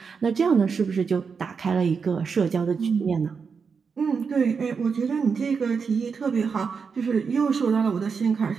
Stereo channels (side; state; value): left; quieter; 5.6 dB